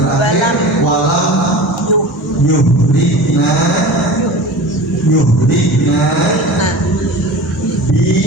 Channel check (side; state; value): both; normal; correlation 0.34